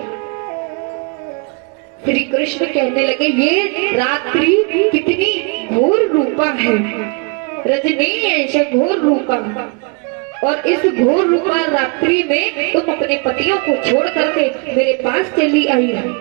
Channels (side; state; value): left; quieter; 32.7 dB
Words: श्री कृष्ण कहने लगे, ये रात्रि कितनी घोर रूपा है, रजनी ऐसे घोर रूपा, और इस घोर रूपा रात्रि में तुम अपने पतियों को छोड़ करके मेरे पास चली आई हो।